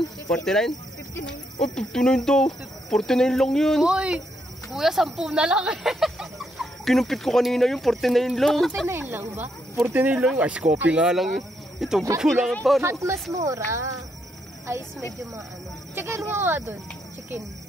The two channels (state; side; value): normal; both; correlation 0.77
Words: 49? 59. Oh, 59 daw. 49 lang yun. Uy! Kuya, 10 na lang eh. Kinumpit ko kanina yung 49 lang. 49 lang ba? 49 lang. Ice coffee nga lang. Ito, kukulangan pa. Hot mas mura. Ice medyo maano. Chicken mo nga dun. Chicken.